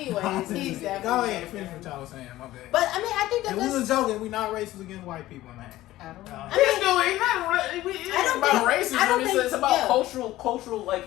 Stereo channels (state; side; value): quieter; right; 15.8 dB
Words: he's definitely Go ahead, joking. finish what y'all was saying. My bad. But I mean, I think that If we was joking, we not racist against white people, man. I don't know. It's about racism. It's about